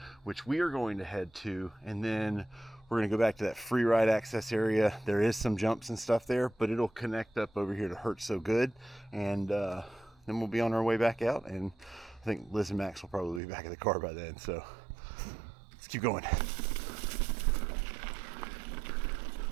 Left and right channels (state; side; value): drops out; left; at 13.4 s